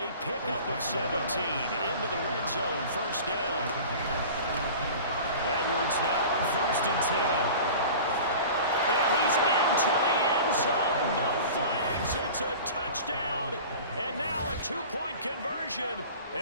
pickup of 17 into the red zone, first down. Edwards now on 1st and 10. And he's into the end zone, no flags, it's a touchdown, and now a two-point conversion,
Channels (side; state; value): both; inverted; correlation -0.39